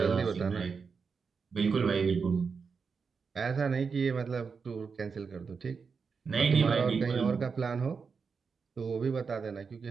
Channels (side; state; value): left; quieter; 5.4 dB